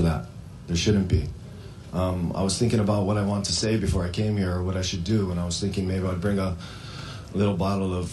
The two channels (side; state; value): both; identical; correlation 1.00